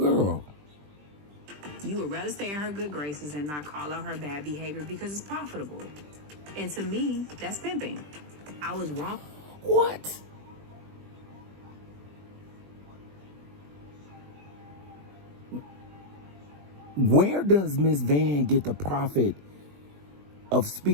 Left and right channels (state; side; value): late; left; 20 ms